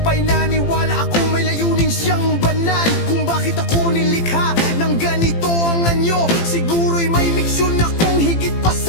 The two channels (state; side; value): late; right; 18 ms